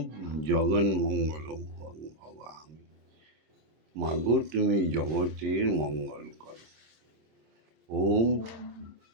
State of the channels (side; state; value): left; late; 26 ms